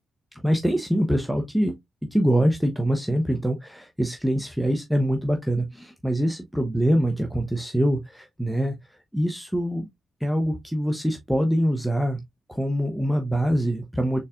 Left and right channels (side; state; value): both; normal; correlation 0.95